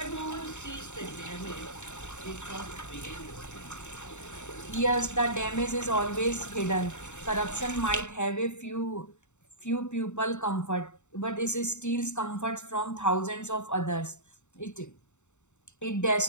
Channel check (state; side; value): late; right; 0.84 ms